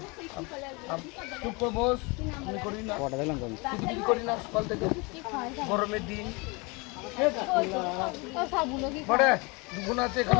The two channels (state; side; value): quieter; right; 28.1 dB